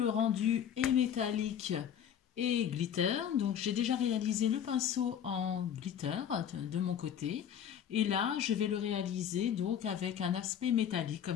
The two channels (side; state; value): right; quieter; 9.0 dB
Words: rendu et métallique et glitter, donc j'ai déjà réalisé le pinceau en glitter de mon côté. Et là, je vais le réaliser donc avec un aspect métallique.